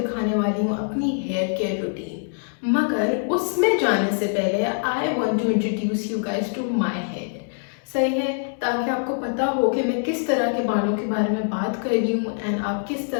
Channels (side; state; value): right; silent; digital silence